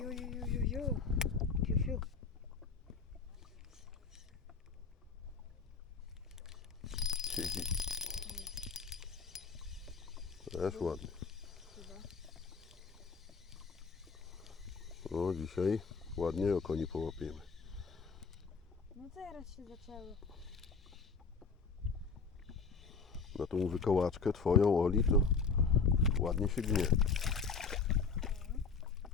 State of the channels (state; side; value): quieter; right; 5.1 dB